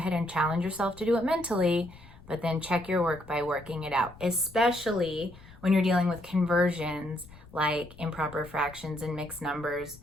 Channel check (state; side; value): noise; left; rumble, 21 dB below the sound